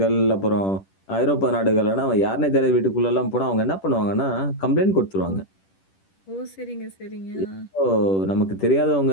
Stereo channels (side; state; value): right; late; 10 ms